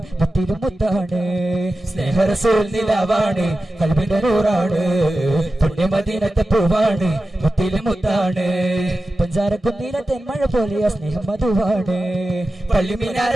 മുത്തിലും മുത്താണ് സ്നേഹറസൂൽ നിലാവാണ് കൽബിന്റെ നൂറാണ് പുണ്യമദീനത്തെ പൂവാണ് മുത്തിലും മുത്താണ് പഞ്ചാരക്കുന്നിലെ തെന്മഴ പോലെ സ്നേഹം മധുവാണ്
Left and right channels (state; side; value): normal; both; correlation 0.93